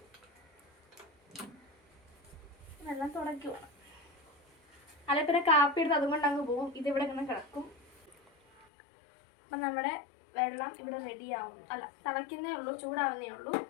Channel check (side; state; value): right; drops out; at 8.7 s